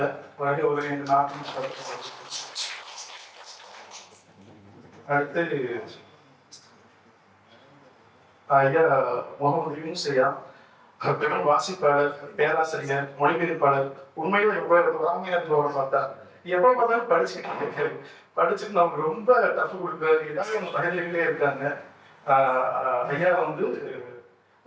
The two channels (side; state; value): both; identical; correlation 1.00